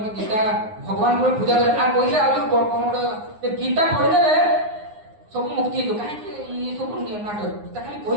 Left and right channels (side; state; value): left; late; 9.7 ms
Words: ଗୀତା ଭଗବାନଙ୍କର ପୂଜା କର ଆଉ କହିଲେ ଆଉ ଯୋଉ କଣ ଗୋଟେ ଗୀତା ପଢିଦେଲେ ସବୁ ମୁକ୍ତି ହେଇଯିବ କାହିଁକି ଏ ସବୁ ନାଟକ ଗୀତା ଖାଲି